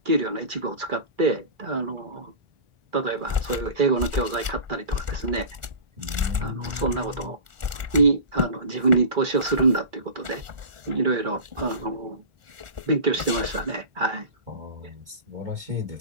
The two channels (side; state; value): left; late; 1.4 ms